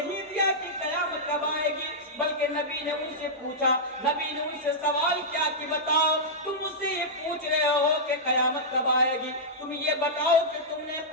دیا کہ قیامت کب آئے گی، بلکہ نبی نے ان سے پوچھا، نبی نے ان سے سوال کیا کہ بتاؤ، تم مجھ سے یہ پوچھ رہے ہو کہ قیامت کب آئے گی، تم یہ بتاؤ کہ تم نے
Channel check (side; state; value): both; normal; correlation -0.10